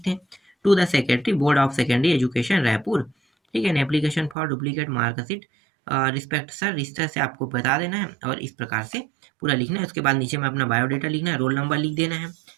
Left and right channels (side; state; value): left; drops out; at 4.4 s